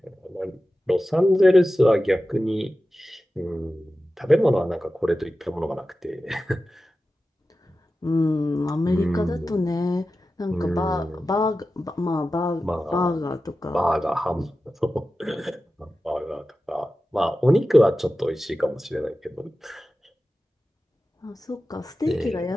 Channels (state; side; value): normal; both; correlation 0.94